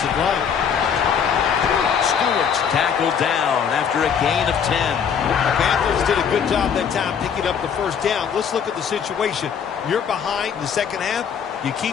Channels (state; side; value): quieter; right; 7.3 dB